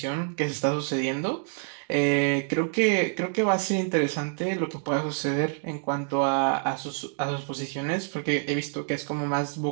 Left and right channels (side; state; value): left; silent; 57 dB below the other